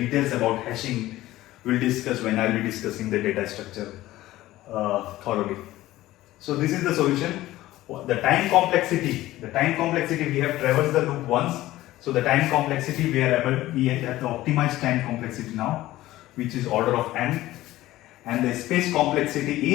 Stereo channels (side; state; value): right; quieter; 16.1 dB